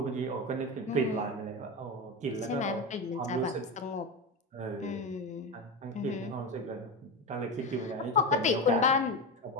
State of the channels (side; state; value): both; normal; correlation 0.18